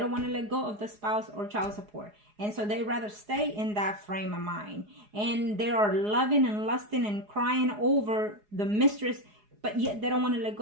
want to let go of the spouse or child support. And so they rather stay in that frame of mind. And they are loving and lusting and crying over the mistress, but yet they don't want to let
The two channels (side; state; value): left; late; 4.8 ms